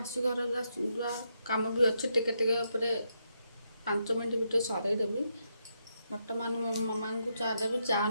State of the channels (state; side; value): inverted; both; correlation -0.81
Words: घर कम भी अच्छे टिके टिके 5 मिनट भितर सरईदेवी। बर्तमान मो मामा को चा देवी चा